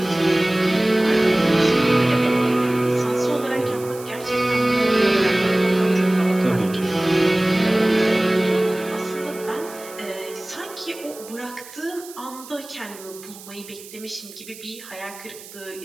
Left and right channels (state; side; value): noise; right; hiss, 17 dB below the sound